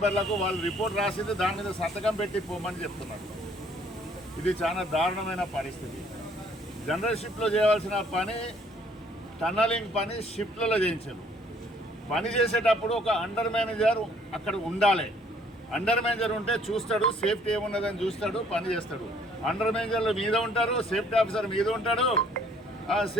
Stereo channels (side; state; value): both; normal; correlation 0.61